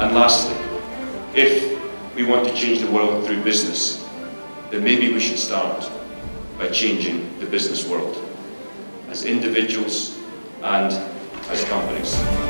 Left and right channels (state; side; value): inverted; both; correlation -1.00